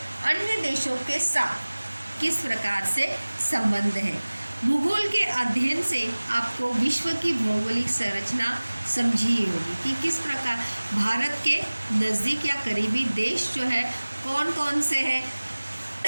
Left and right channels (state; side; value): inverted; both; correlation -1.00